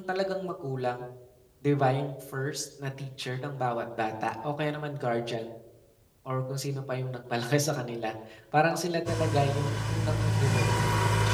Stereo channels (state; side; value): identical; both; correlation 1.00